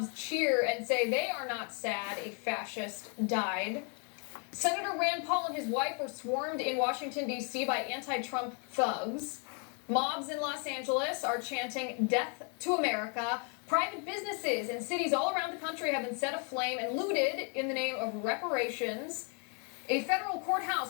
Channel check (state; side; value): quieter; right; 38.4 dB